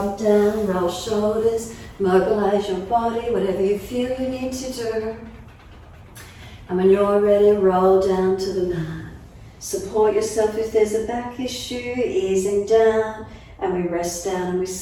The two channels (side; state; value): both; identical; correlation 1.00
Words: down, roll shoulders, mobilize your body, whatever you feel you need to do. And when you're ready, roll down to the mat. Support yourself if there's a back issue, easing down, and we rest down and we